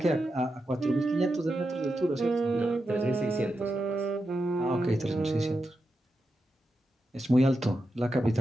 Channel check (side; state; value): both; normal; correlation 0.88